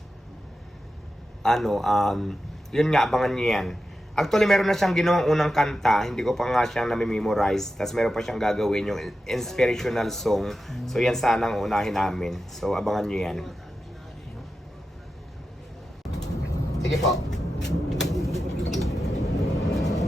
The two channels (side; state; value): both; normal; correlation 0.91